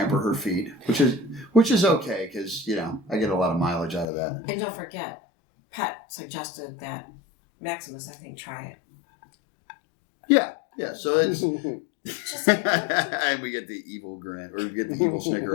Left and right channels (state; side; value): drops out; right; at 4.0 s